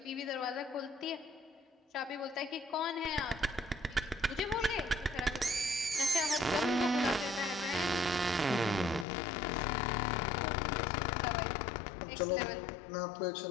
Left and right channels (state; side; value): drops out; right; at 9.1 s